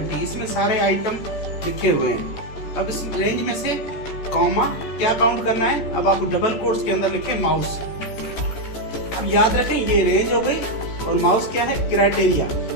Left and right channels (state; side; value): late; right; 14 ms